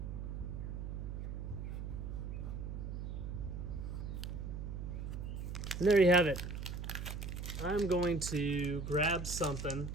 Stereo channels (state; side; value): noise; right; hum, 5 dB below the sound